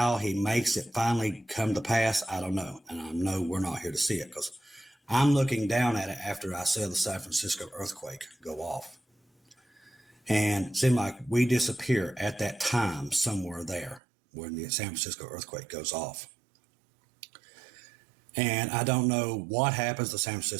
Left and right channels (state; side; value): drops out; left; at 14.0 s